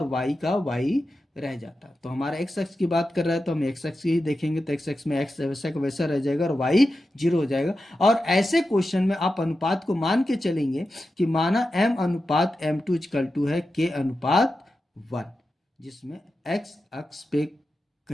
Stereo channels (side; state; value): both; normal; correlation 0.91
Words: y का y रह जाता। तो हमारा x अक्ष की बात कर रहा है तो हम x अक्ष ही देखेंगे, तो x अक्ष में x वैसा का वैसा रह जाएगा और y 0 हो जाएगा। और ऐसे क्वेश्चन में आप अनुपात को मान के चलेंगे कि माना m अनुपात m2 इक्वल टू है k अनुपात 1, जिसमें x अक्ष पे